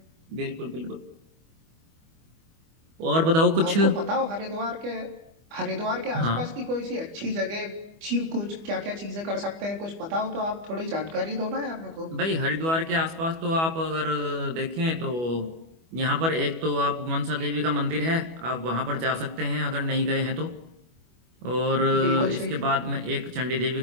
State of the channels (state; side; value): late; left; 25 ms